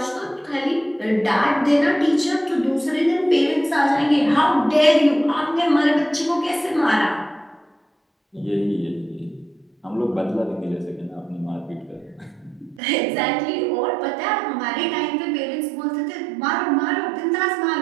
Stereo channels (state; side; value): drops out; left; at 12.8 s